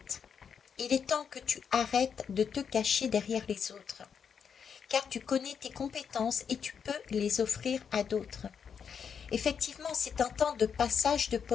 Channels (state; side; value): quieter; right; 7.0 dB